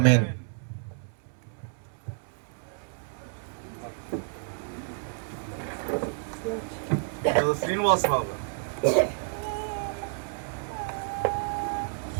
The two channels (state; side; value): silent; left; 58 dB below the other